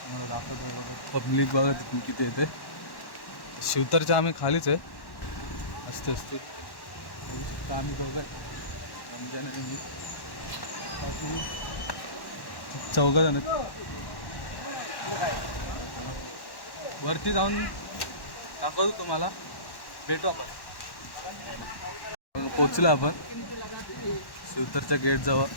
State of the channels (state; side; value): late; right; 1.1 ms